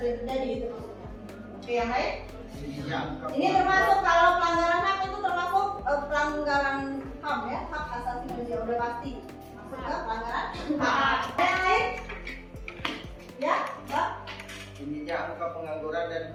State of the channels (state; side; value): identical; both; correlation 1.00